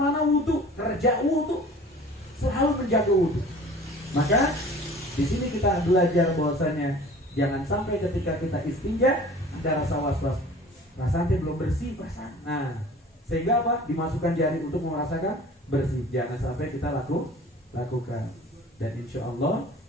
wudu, kerja wudu, selalu menjaga wudu. Maka di sini kita belajar bahwasanya jangan sampai ketika kita istinja ada rasa was-was, rasanya belum bersih, perasaan. Nah, sehingga apa? Dimasukkan jari untuk merasakan bersih. Jangan sampai kita lakukan. Dan insya Allah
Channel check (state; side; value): normal; both; correlation 0.45